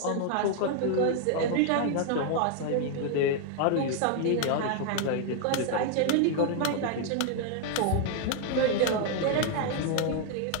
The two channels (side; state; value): both; different; correlation 0.00